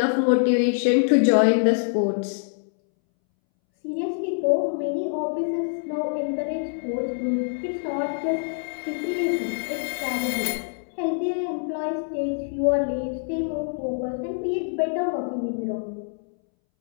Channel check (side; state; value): right; silent; 62 dB below the other